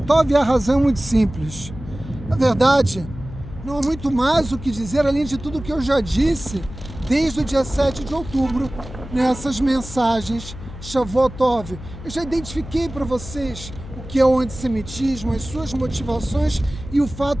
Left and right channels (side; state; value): left; noise; hum, 13 dB below the sound